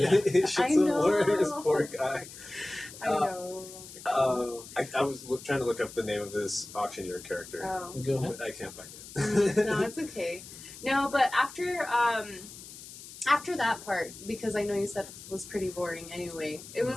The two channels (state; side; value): noise; left; hiss, 15 dB below the sound